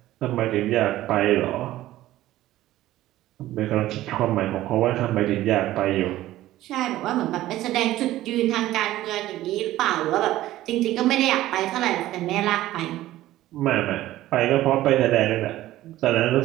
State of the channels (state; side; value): quieter; left; 15.1 dB